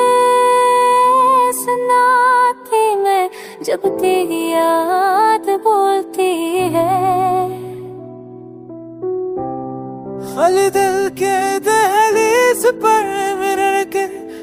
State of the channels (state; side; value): identical; both; correlation 1.00